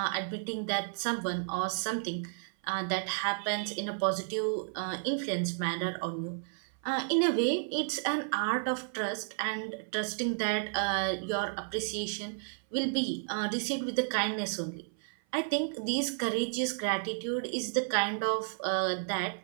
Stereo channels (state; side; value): silent; left; 56 dB below the other